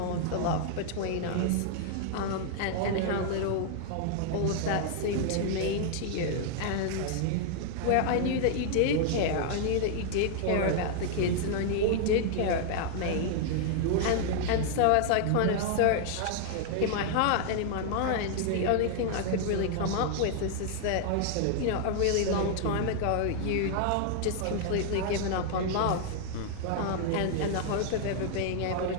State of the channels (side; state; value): both; different; correlation 0.00